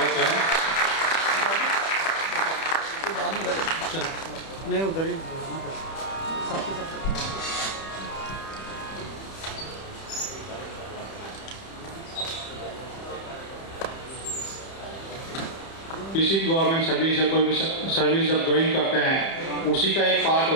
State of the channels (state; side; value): late; right; 31 ms